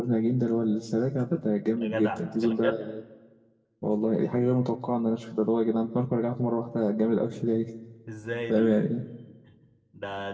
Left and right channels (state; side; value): identical; both; correlation 1.00